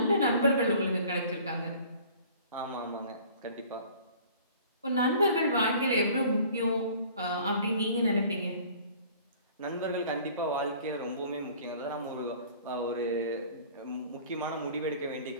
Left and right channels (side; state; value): both; inverted; correlation -0.49